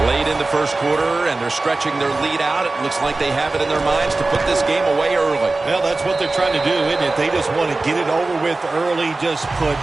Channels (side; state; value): left; quieter; 3.3 dB